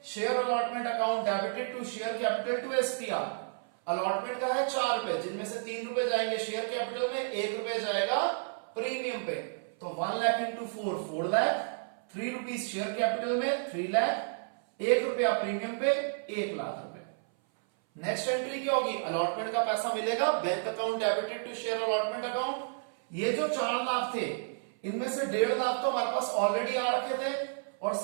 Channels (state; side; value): silent; left; 56 dB below the other